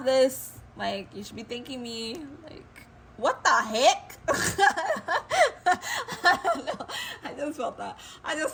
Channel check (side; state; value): both; identical; correlation 1.00